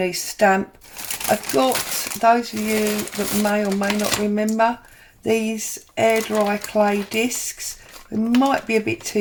stamp. I've got, those of you that may or may not remember, these air dry clay discs. It might be a bit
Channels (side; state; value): both; identical; correlation 1.00